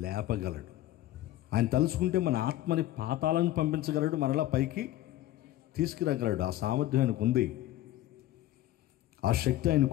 లేపగలడు. ఆయన తలుచుకుంటే మన ఆత్మని పాతాలను పంపించగలడు, మరలా పైకి తీసుకురాగలడు. ఆ సామర్థ్యం ఆయనకు ఉంది, ఆ శక్తి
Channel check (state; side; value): quieter; right; 14.6 dB